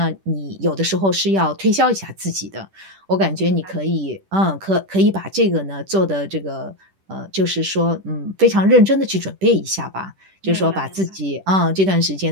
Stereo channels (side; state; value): left; late; 10 ms